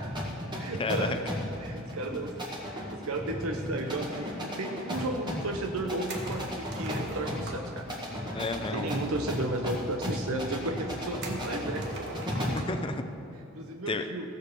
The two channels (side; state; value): both; normal; correlation 0.35